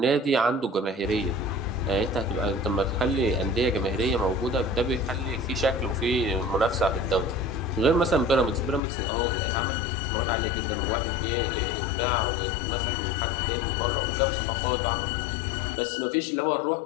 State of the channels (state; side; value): drops out; right; at 8.8 s